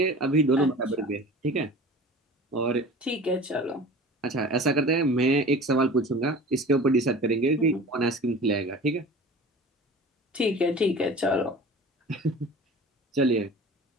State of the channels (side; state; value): both; normal; correlation 0.40